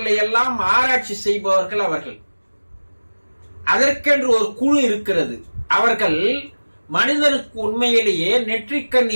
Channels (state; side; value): inverted; both; correlation -1.00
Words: எல்லாம் ஆராய்ச்சி செய்பவர்கள் அவர்கள். அதற்கென்று ஒரு குழு இருக்கிறது. அவர்கள் மனிதனுக்கு உண்மையிலேயே நெற்றிக்கண்